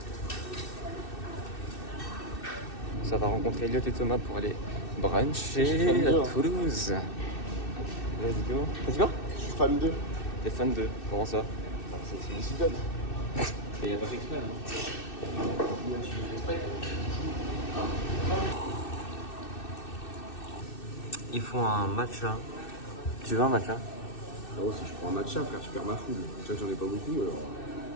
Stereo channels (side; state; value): right; late; 2.6 ms